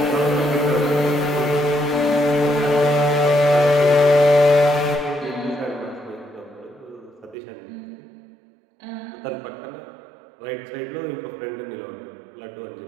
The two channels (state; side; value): drops out; left; at 7.4 s